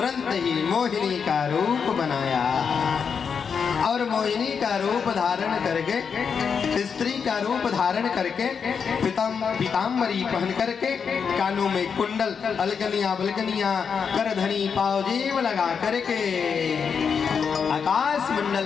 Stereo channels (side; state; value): right; quieter; 6.4 dB